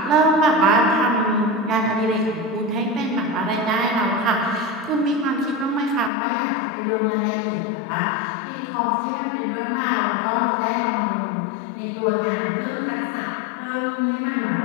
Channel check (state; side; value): drops out; right; at 6.1 s